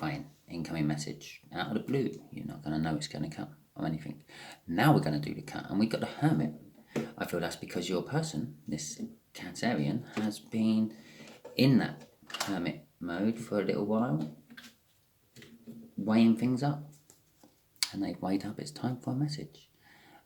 incoming message out of the blue. You're not going to know it's going to come or anything. Now we're going to do the cut, and we got the Hermit. I feel that's because your person, this Cancerian, has been in that Hermit mode for a little while, weighing things up, and they've weighed up it's time for a message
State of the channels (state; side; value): identical; both; correlation 1.00